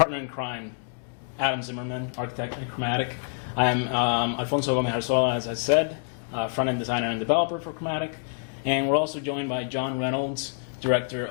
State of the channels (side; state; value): right; silent; digital silence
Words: in crime, Adam Zimmerman, architect at Chromatic. I am Alfonso Gomez Arzola, as I said, front-end designer and developer for Chromatic. And we're also joined by John Reynolds, Director